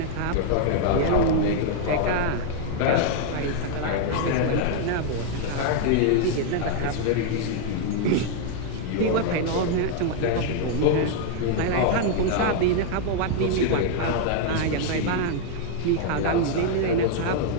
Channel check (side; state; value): both; different; correlation 0.00